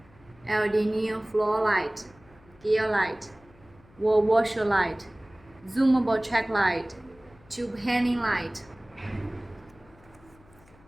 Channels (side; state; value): left; noise; hum, 28 dB below the sound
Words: LED neon floor light, gear light, wall washer light, zoomable check light, tube hanging light,